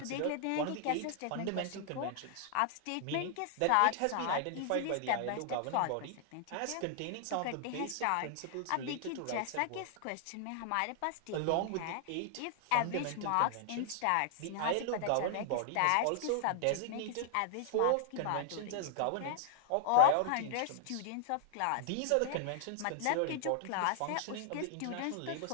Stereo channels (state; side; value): different; both; correlation -0.01